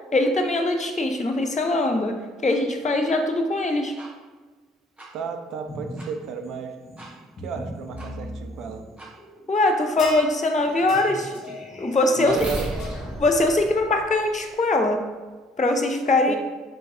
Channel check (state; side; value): normal; both; correlation 0.60